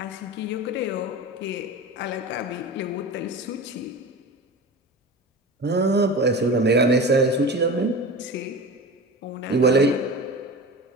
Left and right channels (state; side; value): normal; both; correlation 0.30